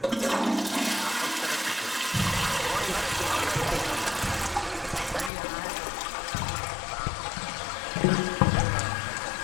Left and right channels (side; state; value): right; drops out; at 5.3 s